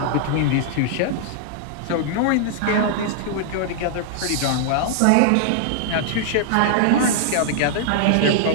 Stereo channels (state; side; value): different; both; correlation -0.01